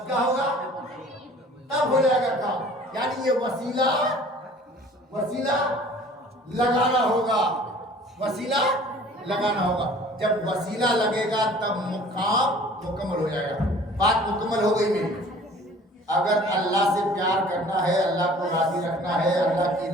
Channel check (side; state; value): both; normal; correlation 0.49